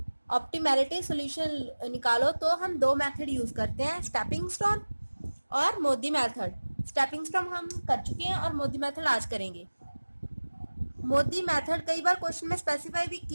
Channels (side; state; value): both; inverted; correlation -1.00